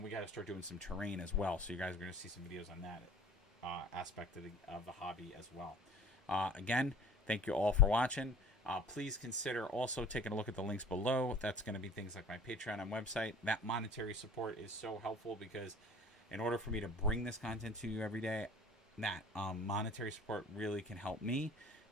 we got to start doing some terrain as well. So you guys are going to see some videos on that aspect of the hobby as well. Again, thank you all for watching. Please consider also taking a look at the links below. That's going to be things like my Patreon and website. That monetary support is so helpful, because in order for me to bring this content to you every day, that monetary support really can help me.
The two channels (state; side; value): normal; both; correlation 0.46